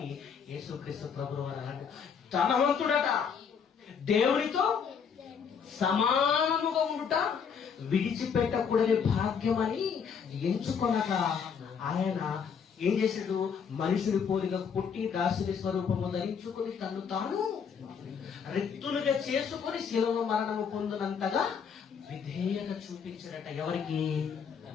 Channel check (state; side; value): quieter; right; 6.7 dB